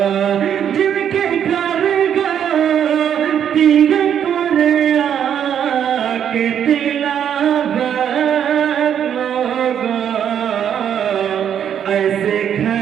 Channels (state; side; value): quieter; left; 9.0 dB